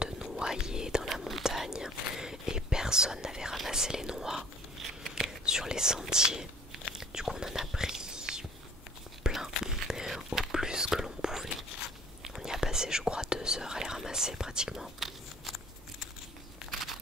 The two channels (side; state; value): both; normal; correlation 0.51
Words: noyers dans la montagne et personne n'avait ramassé les noix sur les sentiers. Du coup on en a pris plein, au plus que l'on pouvait. On y a passé je crois 2 heures à les ramasser pratiquement.